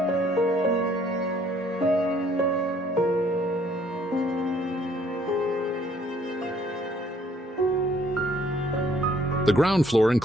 The ground floor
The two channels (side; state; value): both; normal; correlation 0.62